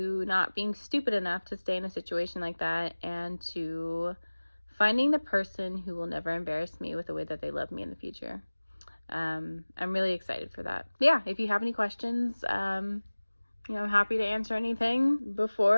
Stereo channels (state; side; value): inverted; both; correlation -1.00